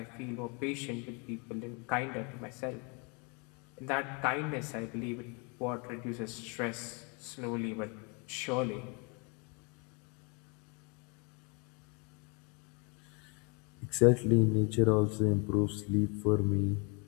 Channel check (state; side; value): quieter; right; 33.0 dB